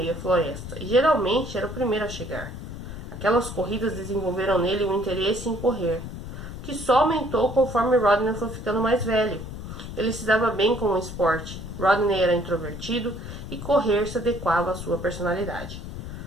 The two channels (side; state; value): left; noise; rumble, 9 dB below the sound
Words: à floresta, e geralmente era o primeiro a chegar. Aquelas corridas desenvolveram nele um interesse em correr, que só aumentou conforme Rodney foi ficando mais velho. Ele se dava bem com o esporte. Rodney era introvertido e correr se adequava à sua personalidade.